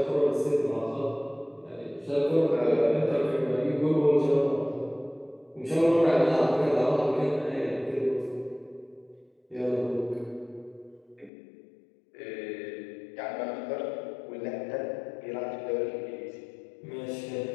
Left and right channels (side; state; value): right; drops out; at 11.3 s